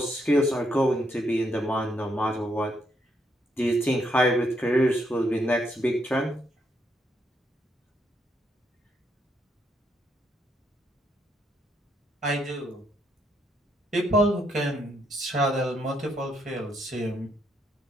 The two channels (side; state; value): both; normal; correlation 0.75